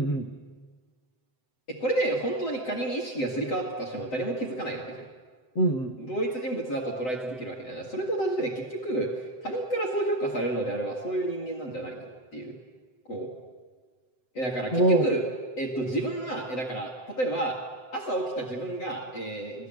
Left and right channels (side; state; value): right; late; 7.8 ms